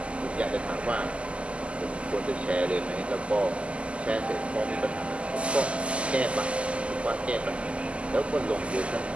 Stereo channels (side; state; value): left; late; 0.056 ms